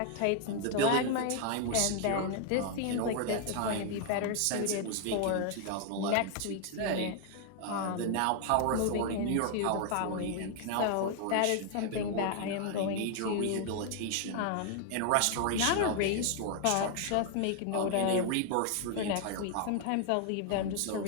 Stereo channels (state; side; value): different; both; correlation 0.00